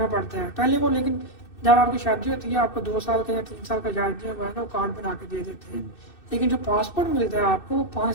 पड़ता है पहले वो, लेकिन जब आपकी शादी होती है आपको 2 साल का या 3 साल का जायज जो है ना वो कार्ड बना के दे देते हैं। लेकिन जो पासपोर्ट मिलता है आपको वो 5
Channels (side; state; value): right; late; 2.6 ms